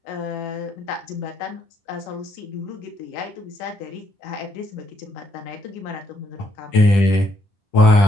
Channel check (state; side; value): late; right; 10 ms